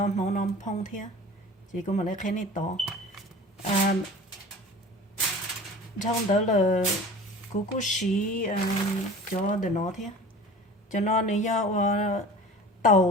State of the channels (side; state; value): both; normal; correlation 0.40